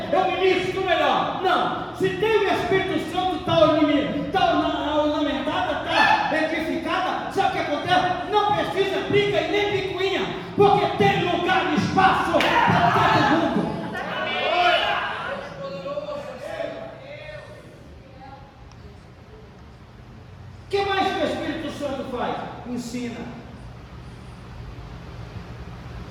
ministro melhor, não. Se tem o Espírito Santo, está ornamentada, está edificada, sabe o que acontece? Não precisa briga e nem picuinha, porque tem lugar e espaço para todo mundo. O que mais que o Espírito Santo faz? Ensina.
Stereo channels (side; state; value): both; identical; correlation 1.00